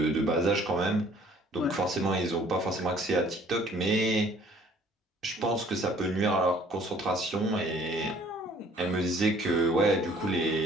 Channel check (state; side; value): normal; both; correlation 0.57